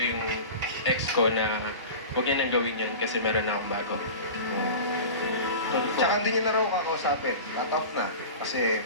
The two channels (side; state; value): both; inverted; correlation -0.33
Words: yung ex ko na huwag niya nang gawin yun kasi meron na akong bago. Tsaka hindi niya na raw kakausapin. Cut off na. Kasi